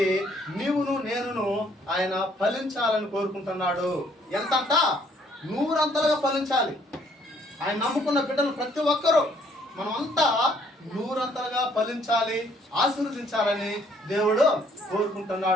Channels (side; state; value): both; normal; correlation 0.64